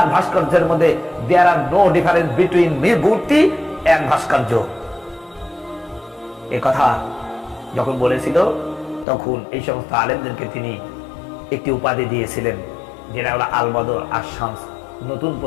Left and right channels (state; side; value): drops out; right; at 9.1 s